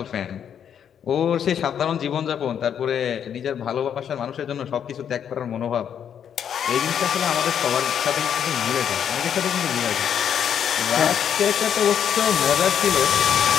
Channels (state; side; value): quieter; right; 8.6 dB